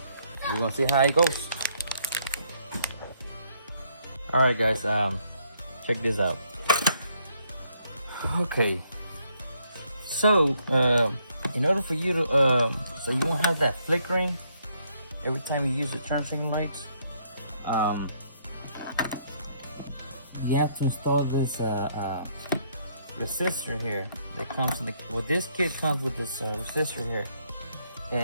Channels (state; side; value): inverted; both; correlation -0.71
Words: gonna see how it goes. Alright guys, check this out. Okay, so in order for you to so you won't have that flickering every time you use the turn signal lights, you have to install this resistor here that comes in the, well, this kit comes with this resistor here,